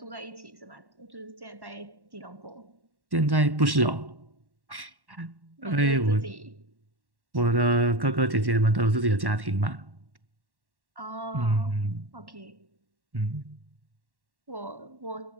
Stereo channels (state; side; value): late; left; 1.1 ms